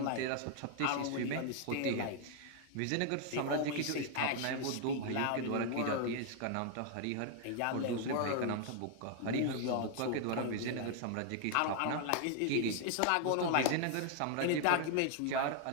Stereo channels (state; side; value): different; both; correlation 0.00